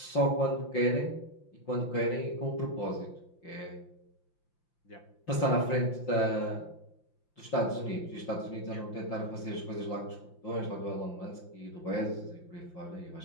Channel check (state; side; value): late; right; 5.8 ms